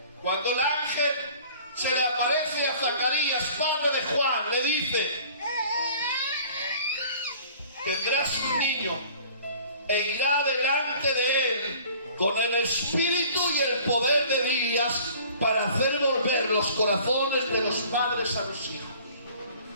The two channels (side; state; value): both; inverted; correlation -0.49